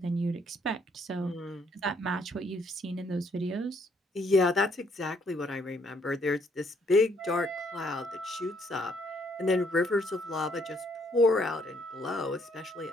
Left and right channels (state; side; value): normal; both; correlation 0.68